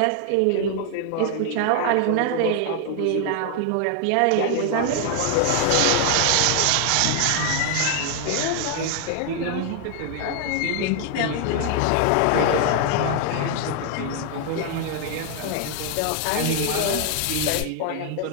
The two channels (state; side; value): different; both; correlation 0.00